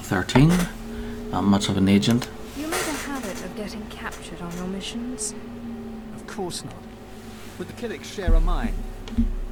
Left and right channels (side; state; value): both; identical; correlation 1.00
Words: 13. Not much of an agent. You made a habit of getting captured on your missions? Of course not. But the Killiks share a mine.